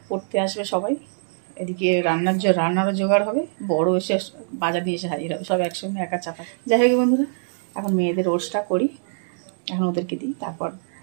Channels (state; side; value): silent; left; digital silence